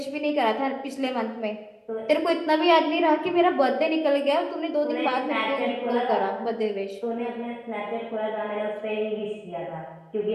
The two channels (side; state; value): both; identical; correlation 1.00